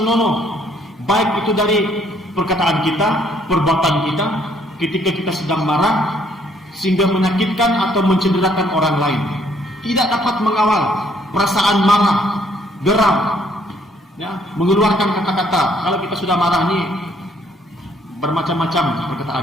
baik itu dari perkataan kita, perbuatan kita, ketika kita sedang marah, sehingga menyakitkan atau mencederakan orang lain. Tidak dapat mengawal perasaan marah, geram, ya, mengeluarkan kata-kata. Kalau kita sudah marah nih, bermacam-macam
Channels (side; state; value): both; normal; correlation 0.66